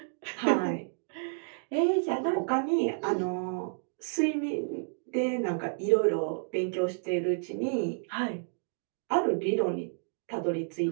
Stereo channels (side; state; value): left; silent; digital silence